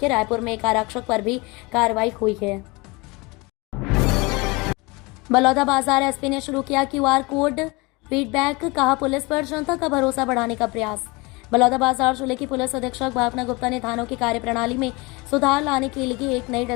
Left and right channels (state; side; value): quieter; right; 25.6 dB